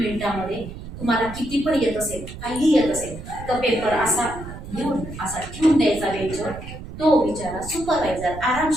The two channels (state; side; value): noise; right; rumble, 12 dB below the sound